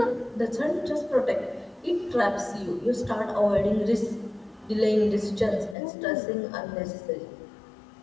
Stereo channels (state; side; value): drops out; right; at 5.8 s